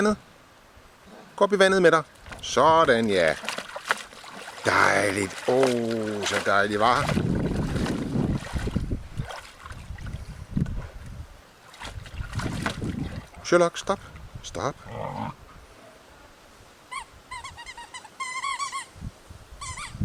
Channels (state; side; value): identical; both; correlation 1.00